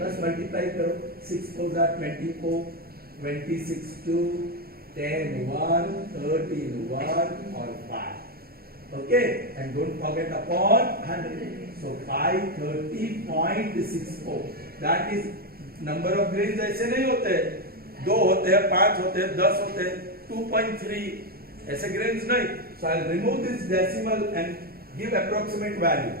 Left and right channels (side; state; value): left; late; 0.44 ms